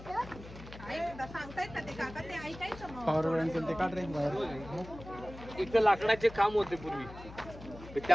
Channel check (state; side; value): noise; left; hum, 15 dB below the sound